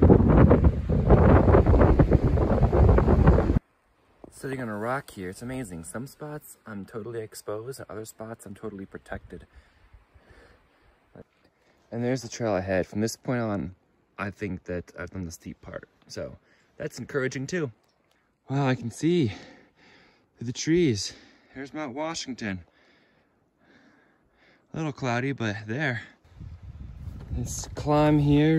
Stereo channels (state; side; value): identical; both; correlation 1.00